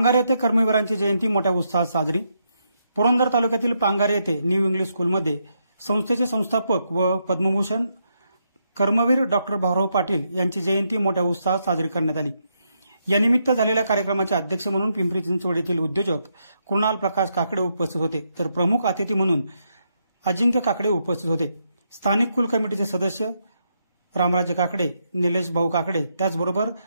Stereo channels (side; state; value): both; inverted; correlation -0.80